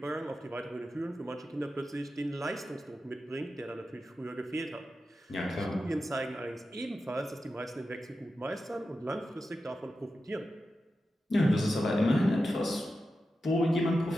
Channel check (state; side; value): normal; both; correlation 0.91